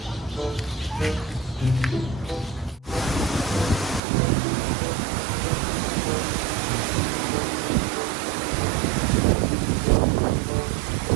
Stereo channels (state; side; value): drops out; left; at 4.0 s